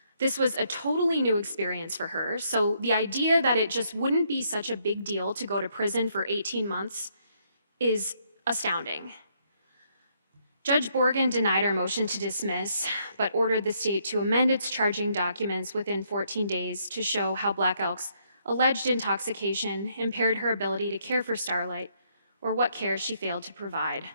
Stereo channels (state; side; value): inverted; both; correlation -0.71